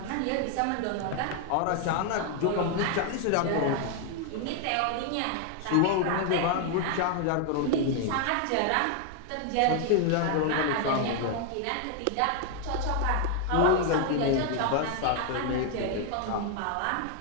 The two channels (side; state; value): both; different; correlation 0.00